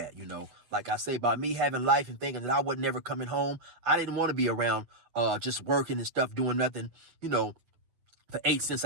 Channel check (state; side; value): late; left; 8.5 ms